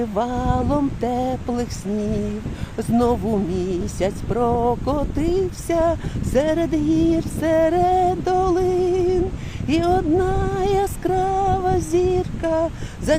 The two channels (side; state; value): both; identical; correlation 1.00